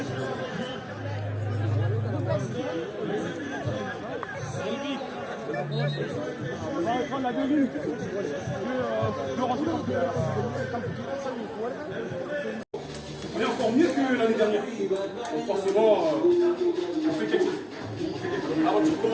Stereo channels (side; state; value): both; identical; correlation 1.00